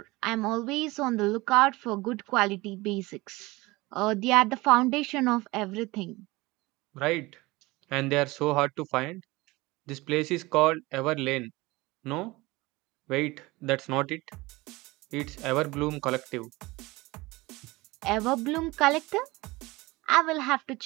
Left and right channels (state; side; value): quieter; left; 21.6 dB